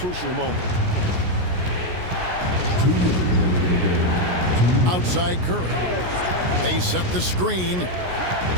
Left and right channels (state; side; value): late; left; 16 ms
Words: moment. Outside Curry. They set the screen.